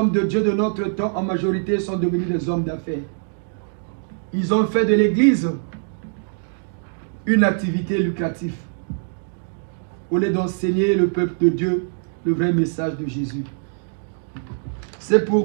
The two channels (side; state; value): left; silent; digital silence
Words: de Dieu de notre temps, en majorité, sont devenus des hommes d'affaires. Ils ont fait de l'Église une activité lucrative, au lieu d'enseigner le peuple de Dieu le vrai message de Jésus. C'est